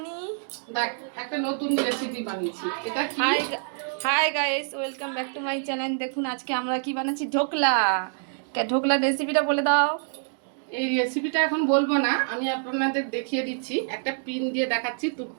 দেখ একটা নতুন রেসিপি বানিয়েছি। এটা কি? Hi guys, welcome back to my channel. দেখুন আজকে আমরা কি বানাচ্ছি, ঢোকলা। ঢোকলার রেসিপিটা বলে দাও। এই রেসিপিটা এখন বলবো না, আমি আপনাদের দেখিয়ে দিচ্ছি। একটা পিন দিয়ে দেখাচ্ছি, তুট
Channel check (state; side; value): silent; left; digital silence